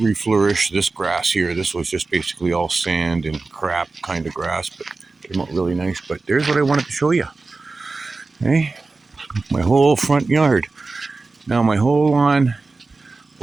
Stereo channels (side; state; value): left; quieter; 3.7 dB